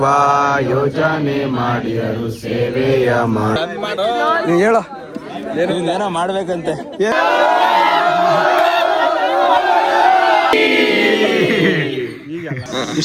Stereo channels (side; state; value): both; identical; correlation 1.00